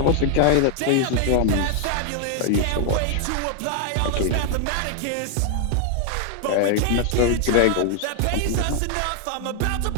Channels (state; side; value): different; both; correlation 0.00